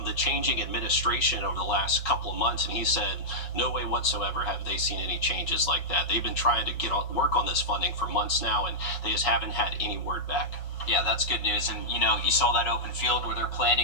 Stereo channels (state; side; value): late; right; 5.5 ms